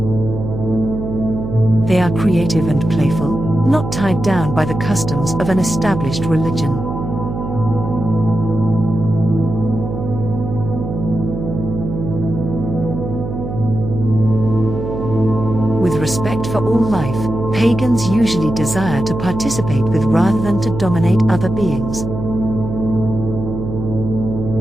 They are creative and playful, not tied down by the customs of an established religion. With respect for all life, pagans usually desire to participate with rather than to dominate other beings.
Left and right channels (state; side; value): noise; right; hum, 6 dB below the sound